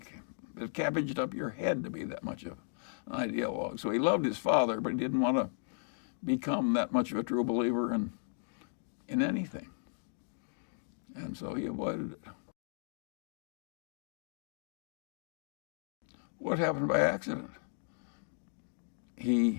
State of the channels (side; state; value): right; silent; digital silence